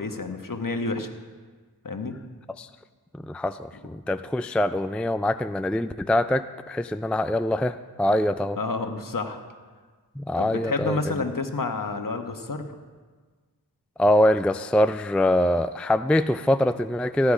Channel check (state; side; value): normal; both; correlation 0.78